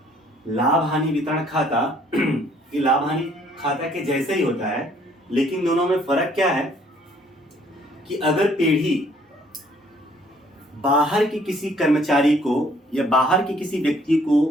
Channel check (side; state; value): both; normal; correlation 0.62